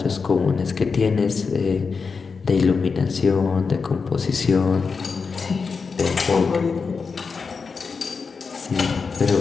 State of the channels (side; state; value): right; quieter; 5.1 dB